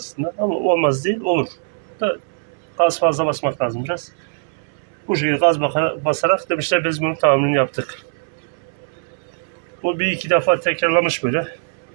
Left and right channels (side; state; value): left; silent; digital silence